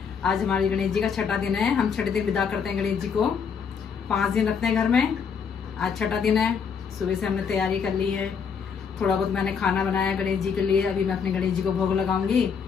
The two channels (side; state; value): right; quieter; 6.4 dB